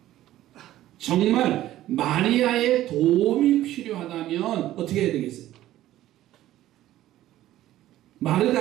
정말 마리아의 도움이 필요하다면 어떻게 해야 되겠어요?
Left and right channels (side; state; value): left; quieter; 14.1 dB